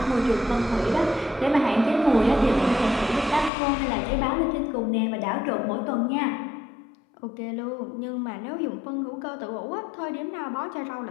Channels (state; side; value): drops out; right; at 3.5 s